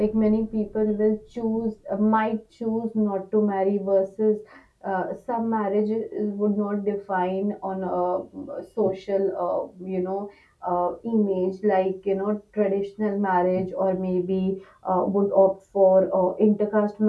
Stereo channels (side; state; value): both; identical; correlation 1.00